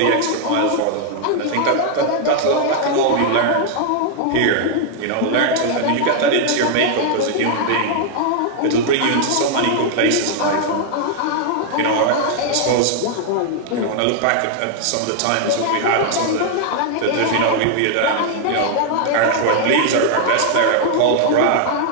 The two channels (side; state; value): both; different; correlation 0.00